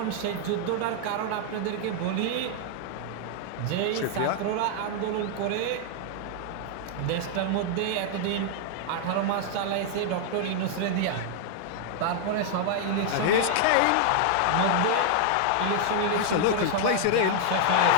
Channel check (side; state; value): both; different; correlation -0.01